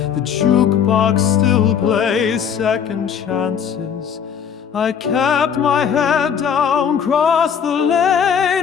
The jukebox still plays second chances. I kept my head down, crossed the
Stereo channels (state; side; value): quieter; right; 7.7 dB